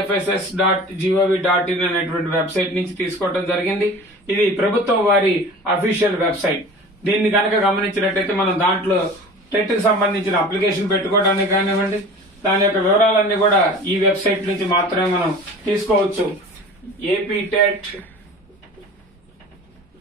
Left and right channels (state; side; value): normal; both; correlation 0.39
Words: అనేటువంటి వెబ్సైట్ నుంచి తీసుకోవడం జరిగింది. ఇది ప్రభుత్వం వారి అఫీషియల్ వెబ్సైట్. దీన్ని కనుక గమనించినట్టయితే మనం దాంట్లో టెట్ కి సంబంధించిన అప్లికేషన్ పెట్టుకోవడానికి కానివ్వండి, దాని యొక్క వివరాలన్నీ కూడా ఈ వెబ్సైట్ నుంచి మాత్రమే మనం తీసుకోవచ్చు.